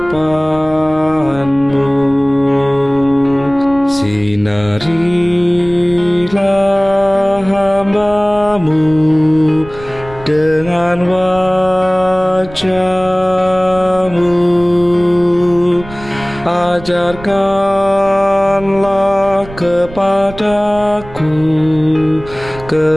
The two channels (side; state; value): right; noise; rumble, 17 dB below the sound